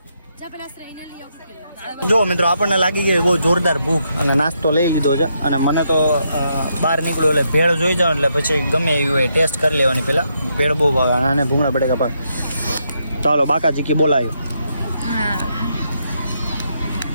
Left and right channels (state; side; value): inverted; both; correlation -0.78